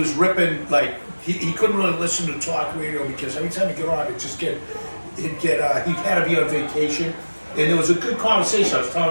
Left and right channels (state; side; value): inverted; both; correlation -1.00